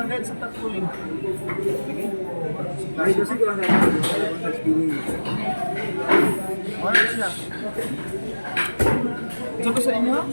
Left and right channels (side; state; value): both; inverted; correlation -1.00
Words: sa tagpuling. Ay kasi ko lang sa spinning. Ano siya? Ito ko sa inyo?